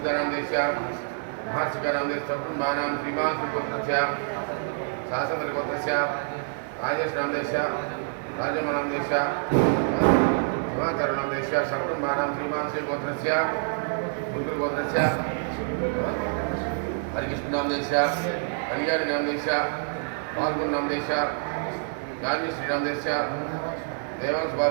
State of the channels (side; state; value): left; silent; 60 dB below the other